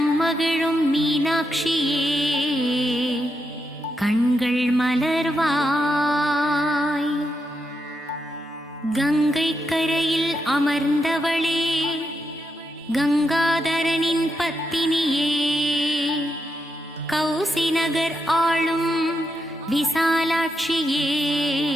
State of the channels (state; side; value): normal; both; correlation 0.83